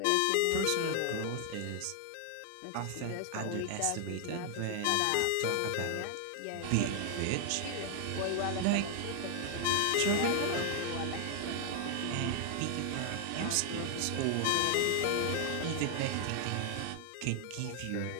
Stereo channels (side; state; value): both; different; correlation 0.00